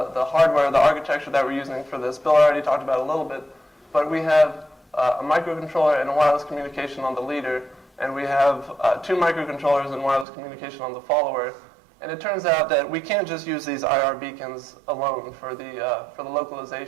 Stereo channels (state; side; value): drops out; left; at 10.2 s